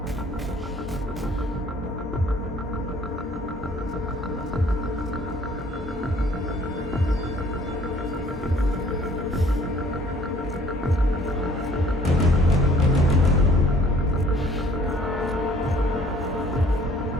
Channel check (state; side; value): normal; both; correlation 0.57